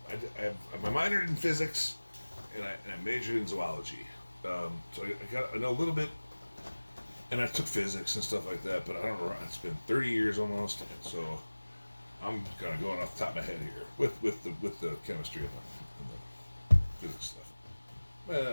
minored in physics, and I majored in zoology. So I know a little bit, and I took physics and stuff like that. But I don't know. It's been 30 years almost, and so I'm kind of going off the top of my head here with the chemistry and the physics stuff.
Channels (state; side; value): inverted; both; correlation -1.00